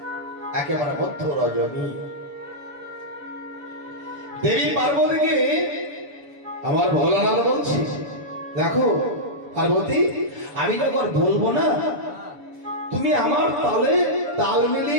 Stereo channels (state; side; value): late; left; 6.9 ms